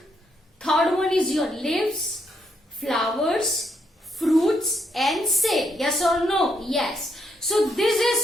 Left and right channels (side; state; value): both; normal; correlation 0.76